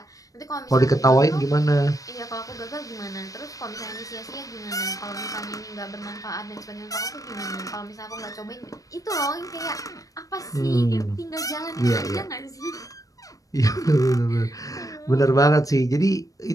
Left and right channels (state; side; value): late; right; 0.16 ms